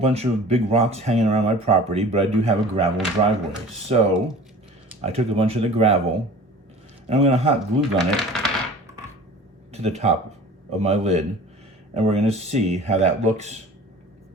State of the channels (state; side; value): normal; both; correlation 0.42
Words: of big rocks hanging around my property, but I do have a gravel driveway. So I took a bunch of the gravel and I'm going to hot glue gun it to the top of my lid, and we're going to see how that looks.